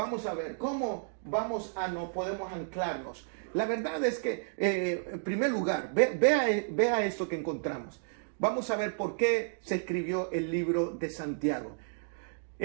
a ver cómo no podemos anclarnos. La verdad es que, en primer lugar, vea esto que encontramos. Vamos a ver por qué se escribió el libro de Santiago.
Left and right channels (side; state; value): left; silent; digital silence